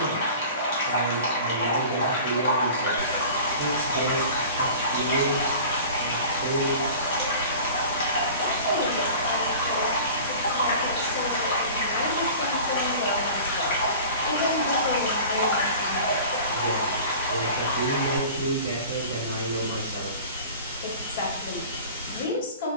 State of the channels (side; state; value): both; inverted; correlation -0.40